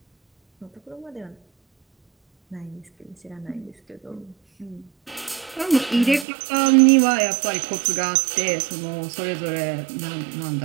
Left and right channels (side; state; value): left; drops out; at 6.2 s